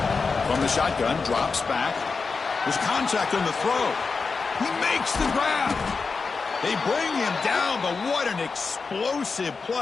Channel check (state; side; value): quieter; right; 4.7 dB